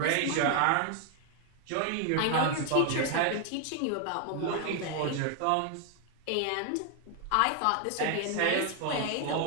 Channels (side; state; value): both; different; correlation 0.00